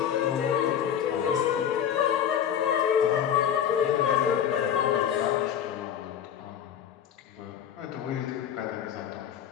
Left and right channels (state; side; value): quieter; right; 9.2 dB